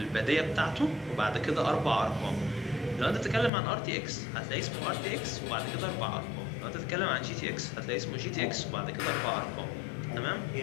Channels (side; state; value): right; drops out; at 3.5 s